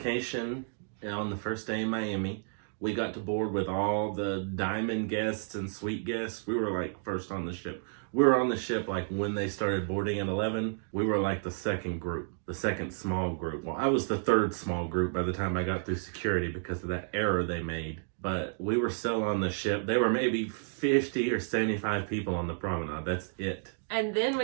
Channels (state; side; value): silent; left; digital silence